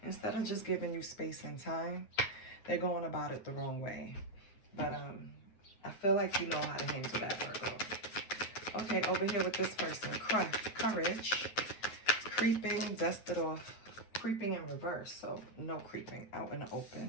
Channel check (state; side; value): late; right; 9.0 ms